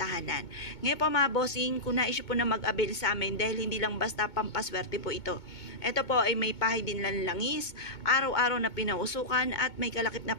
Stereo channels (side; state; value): right; late; 2.2 ms